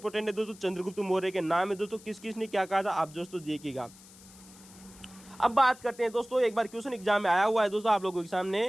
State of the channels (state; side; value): noise; left; hiss, 22 dB below the sound